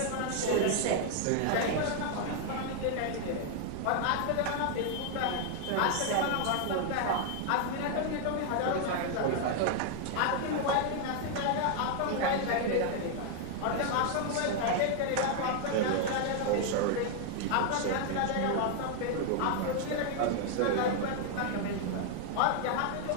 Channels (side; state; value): both; different; correlation 0.00